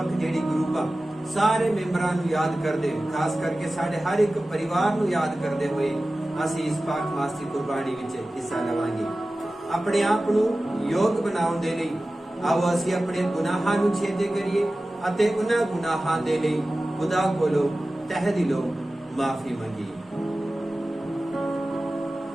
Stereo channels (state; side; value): normal; both; correlation 0.96